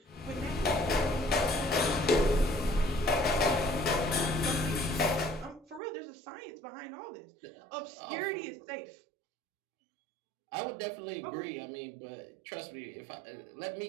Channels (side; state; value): left; drops out; at 5.8 s